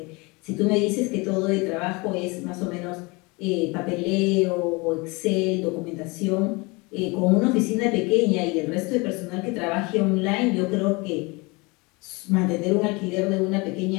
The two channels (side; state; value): right; quieter; 26.6 dB